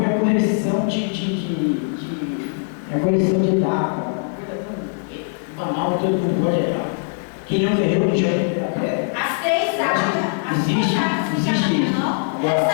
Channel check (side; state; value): right; silent; 65 dB below the other